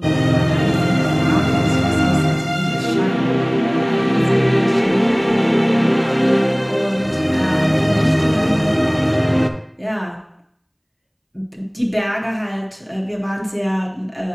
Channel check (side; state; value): both; identical; correlation 1.00